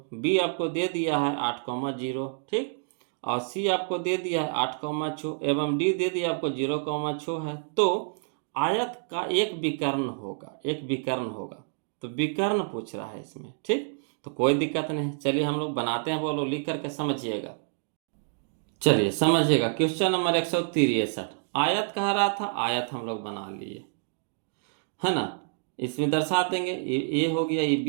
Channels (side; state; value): left; silent; digital silence